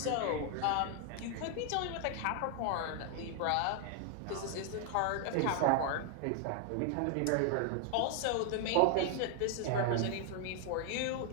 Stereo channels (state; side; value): different; both; correlation 0.00